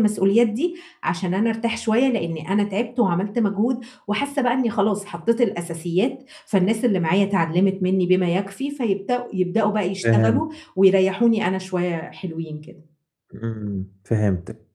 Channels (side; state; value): both; identical; correlation 1.00